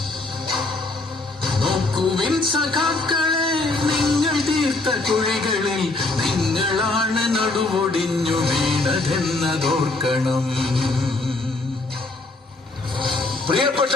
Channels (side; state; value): right; quieter; 3.1 dB